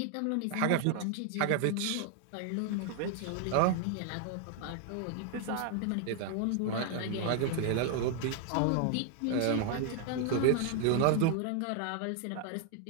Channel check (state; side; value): different; both; correlation 0.00